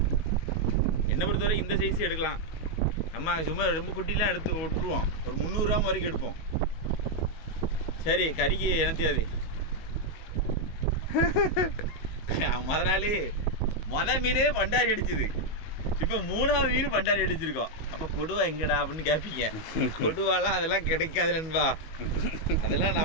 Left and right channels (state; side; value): late; right; 19 ms